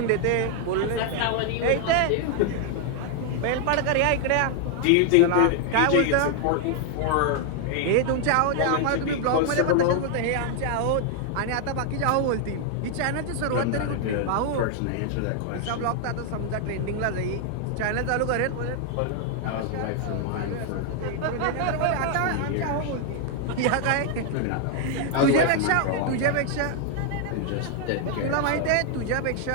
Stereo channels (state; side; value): different; both; correlation 0.00